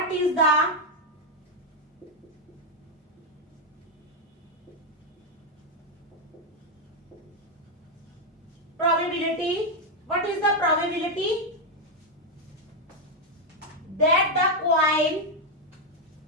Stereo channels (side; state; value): both; normal; correlation 0.02